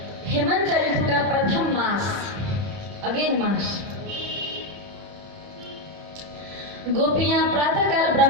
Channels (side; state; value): left; late; 30 ms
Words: हेमंत ऋतु का प्रथम मास, अगेन मास, गोपियां प्रातःकाल